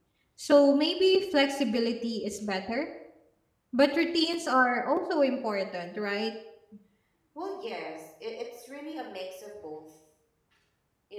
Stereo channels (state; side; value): identical; both; correlation 1.00